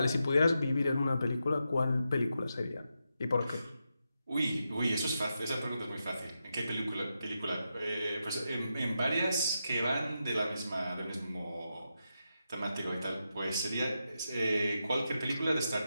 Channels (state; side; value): inverted; both; correlation -0.87